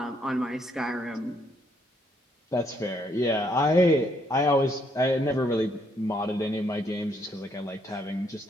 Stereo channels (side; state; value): both; normal; correlation 0.71